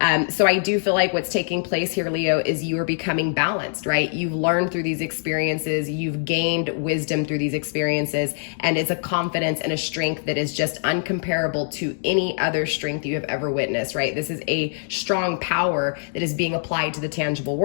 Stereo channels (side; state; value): right; silent; digital silence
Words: So I do feel like what's taking place here, Leo, is you are becoming balanced, right? You've learned through these experiences, you've gained wisdom through these experiences, and it's a confidence and a strength that is just uncomparable to any other strength you have ever witnessed, right? This is a strong power that is being applied to the tangible